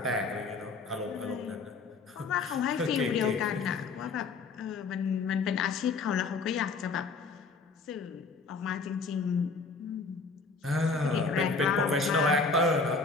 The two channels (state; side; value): quieter; right; 4.2 dB